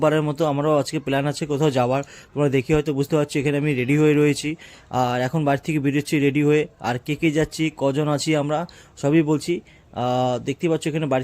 মতো আমারও আজকে প্ল্যান আছে কোথাও যাওয়ার। তোমরা দেখে হয়তো বুঝতে পারছো এখানে আমি রেডি হয়ে রয়েছি। আর এখন বাড়ি থেকে বেরোচ্ছি রেডি হয়ে। আর কে কে যাচ্ছি, কজন আছি আমরা, সবই বলছি। দেখতেই পাচ্ছ এখানে বাড়ি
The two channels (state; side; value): identical; both; correlation 1.00